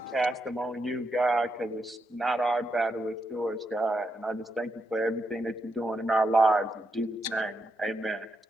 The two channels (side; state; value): both; normal; correlation 0.82